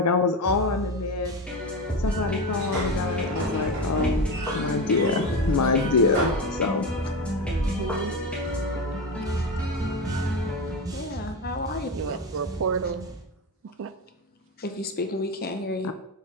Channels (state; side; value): normal; both; correlation 0.19